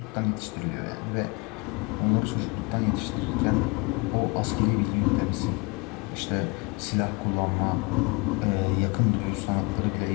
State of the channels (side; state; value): right; quieter; 28.8 dB